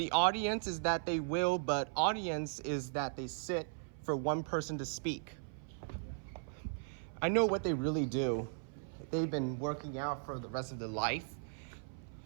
audience is that they will, but audience is that they sit for one person to speak. I know what they really do. They've been working out for the rest of their life.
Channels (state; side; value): silent; left; 53 dB below the other